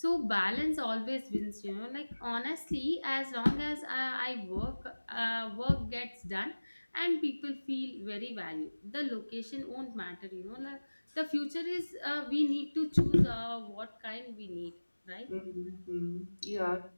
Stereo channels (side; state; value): both; inverted; correlation -1.00